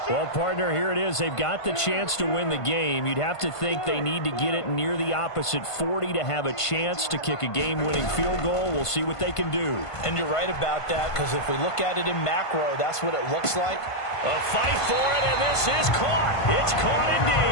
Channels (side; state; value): right; late; 1.5 ms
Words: Well, partner, here it is. They've got the chance to win the game. You'd have to think they need to get it near the opposite 40 to have a chance to kick a game-winning field goal. We'll see what they can do. And you're right about that, because if we look at it in macro, that's what it looks like. A fight for it, and this is caught. It's caught